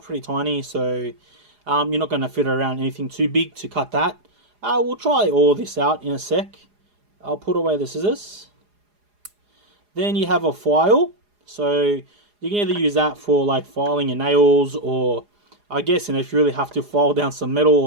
tiny, so you're not going to fit around anything too big to cut that. We'll try all this out in a sec. I'll put away the scissors. Then you have a file. So you can either use that for like filing your nails, or I guess, if you really have to, file down some metal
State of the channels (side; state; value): left; late; 4.8 ms